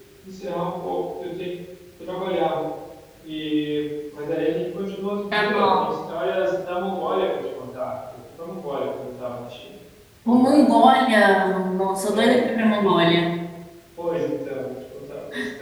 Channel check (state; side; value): identical; both; correlation 1.00